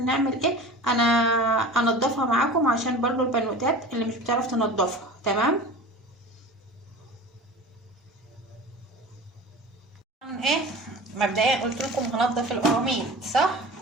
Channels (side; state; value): both; normal; correlation 0.36